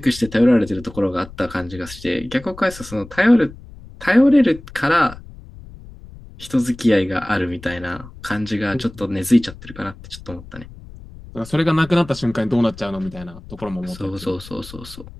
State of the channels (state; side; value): noise; left; rumble, 17 dB below the sound